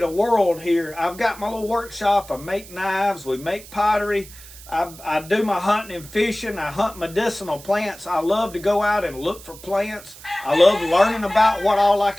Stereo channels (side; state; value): right; noise; hiss, 18 dB below the sound